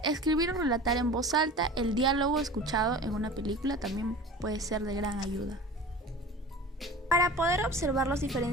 Escribir o relatar en voz alta el diálogo escuchado en una película también puede ser de gran ayuda. Para poder observar los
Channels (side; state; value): both; normal; correlation 0.37